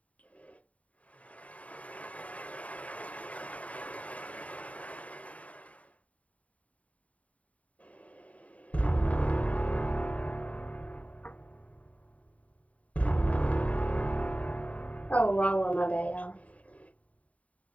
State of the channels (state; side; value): late; right; 0.068 ms